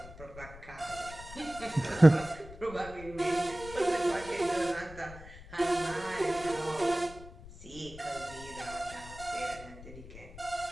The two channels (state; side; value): noise; left; rumble, 16 dB below the sound